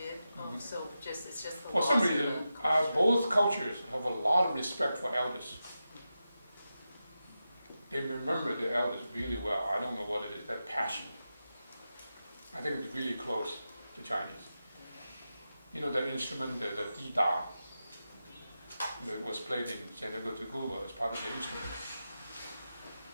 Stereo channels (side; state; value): both; inverted; correlation -0.91